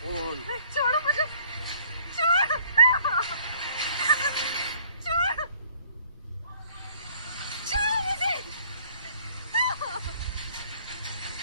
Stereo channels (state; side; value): inverted; both; correlation -0.57